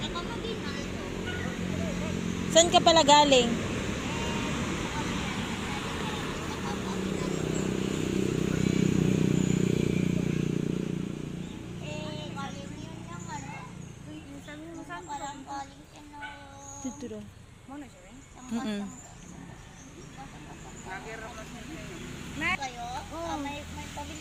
San ka pala galing? Dito daw. Kayo? May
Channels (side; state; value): both; identical; correlation 1.00